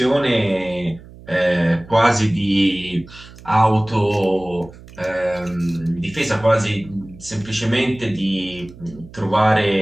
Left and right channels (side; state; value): right; noise; hum, 20 dB below the sound